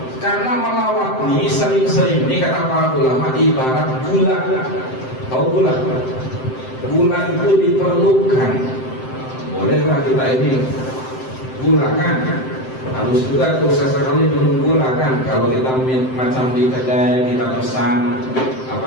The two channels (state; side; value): late; right; 7.7 ms